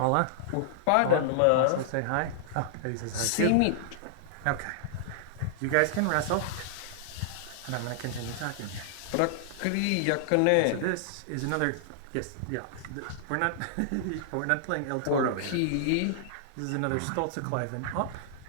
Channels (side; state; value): both; different; correlation -0.01